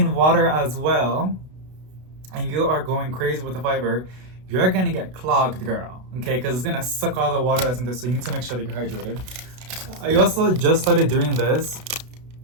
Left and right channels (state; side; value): late; left; 32 ms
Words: water as well, and you are going crazy with the fiber, you're gonna get clogged, girl, okay? Because it's gonna suck all the water that's in there, so you need to make sure that you're hydrated. I also just started doing this.